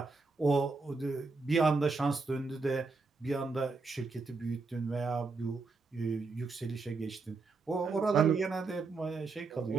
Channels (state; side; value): quieter; left; 4.0 dB